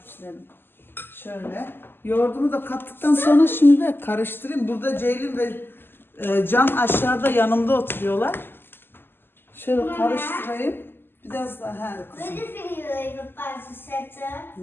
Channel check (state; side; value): late; right; 0.10 ms